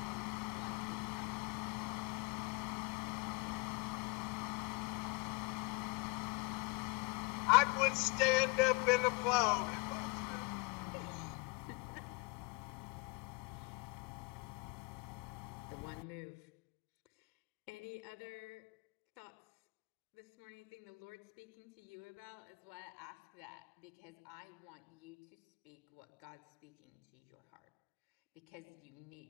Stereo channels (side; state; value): right; quieter; 29.6 dB